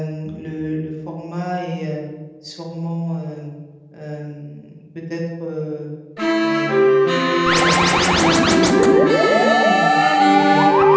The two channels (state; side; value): identical; both; correlation 1.00